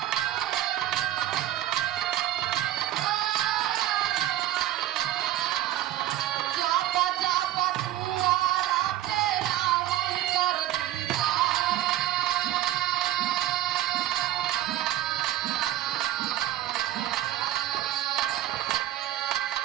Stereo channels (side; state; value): left; quieter; 13.5 dB